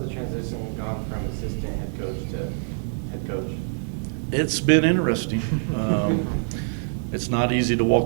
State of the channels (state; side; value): silent; left; 62 dB below the other